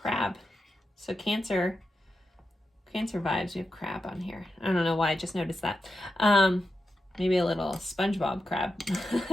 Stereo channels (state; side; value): normal; both; correlation 0.89